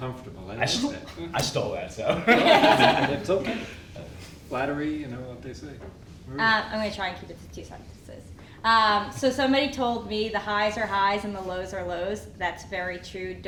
I like that. I stole that, so. It's okay. flattery, you know what they say. Maria? I'm going to try and keep it to 2 sentences. So somebody told me the highs are highs and the lows are lows. That's very true.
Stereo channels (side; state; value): both; identical; correlation 1.00